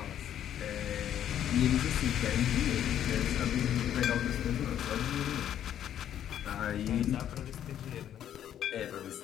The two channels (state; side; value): quieter; right; 10.4 dB